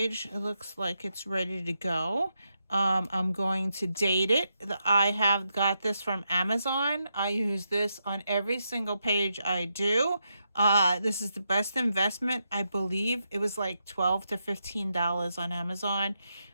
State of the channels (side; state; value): both; inverted; correlation -0.83